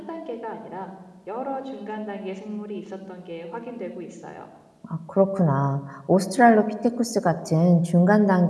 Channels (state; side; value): identical; both; correlation 1.00